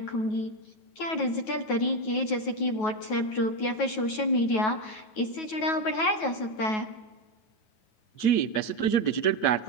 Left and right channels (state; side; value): late; right; 9.3 ms